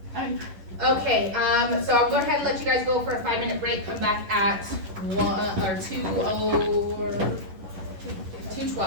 okay, so I'll go ahead and let you guys go for a 5-minute break, come back at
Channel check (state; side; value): late; left; 11 ms